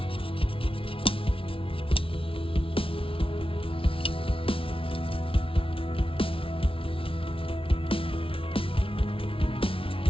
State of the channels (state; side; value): late; right; 0.26 ms